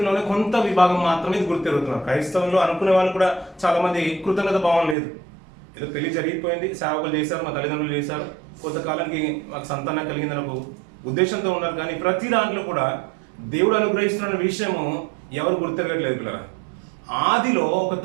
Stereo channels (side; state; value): left; drops out; at 5.0 s